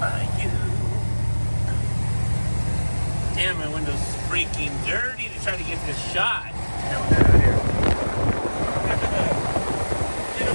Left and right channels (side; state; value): both; inverted; correlation -1.00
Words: by you. Damn, my window's freaking dirty to try to get this shot. Down here. In a